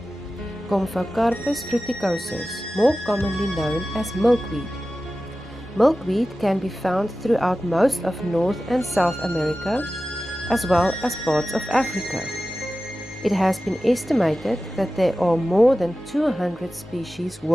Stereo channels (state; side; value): normal; both; correlation 0.95